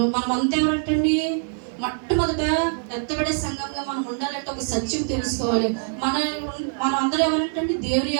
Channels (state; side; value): silent; left; 63 dB below the other